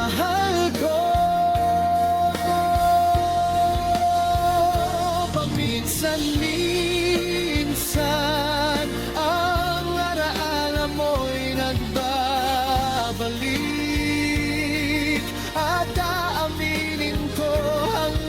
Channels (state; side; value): identical; both; correlation 1.00